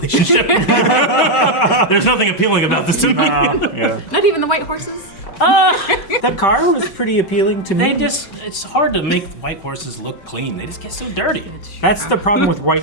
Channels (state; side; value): late; right; 5.3 ms